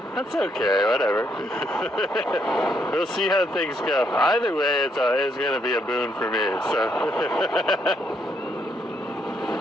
That's okay, whatever. We'll see how things go. Either way, it's going to be a boon for me, so.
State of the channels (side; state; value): both; normal; correlation 0.74